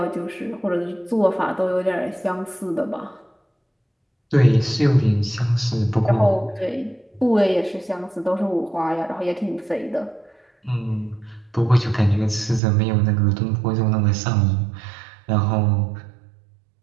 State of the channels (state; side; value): drops out; left; at 12.6 s